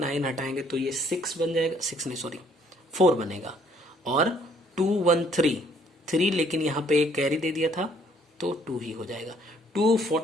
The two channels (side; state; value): both; normal; correlation 0.63